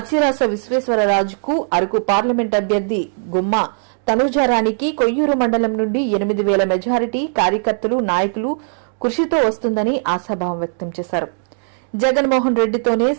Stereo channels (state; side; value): silent; left; digital silence